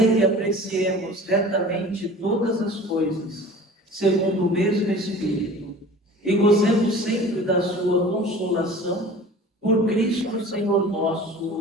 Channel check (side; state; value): both; normal; correlation 0.42